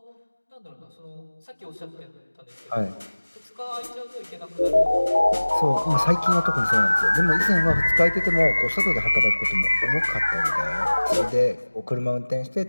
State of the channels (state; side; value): inverted; both; correlation -1.00